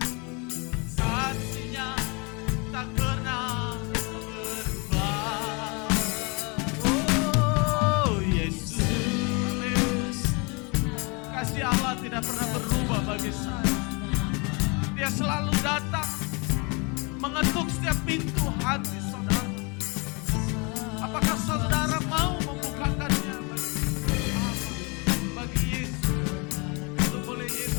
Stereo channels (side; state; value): right; quieter; 30.7 dB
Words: kasih-Nya tak pernah berubah. Oh Yesus, kasih Allah tidak pernah berubah bagi saya. Dia selalu datang mengetuk setiap pintu hati saudara. Apakah saudara mau membukakannya bagi Yesus? Untuk boleh